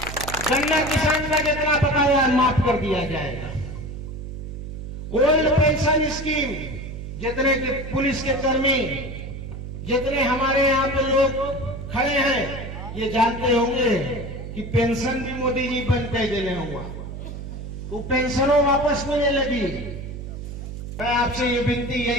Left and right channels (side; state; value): right; noise; hum, 9 dB below the sound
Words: गन्ना किसान का जितना बकाया माफ कर दिया जाएगा। ओल्ड पेंशन स्कीम, जितने के पुलिस के कर्मी, जितने हमारे यहाँ पे लोग खड़े हैं, ये जानते होंगे कि पेंशन भी मोदी जी बंद कर देने हुआ, तो पेंशनों वापस मिलने लगी। मैं आपसे ये विनती,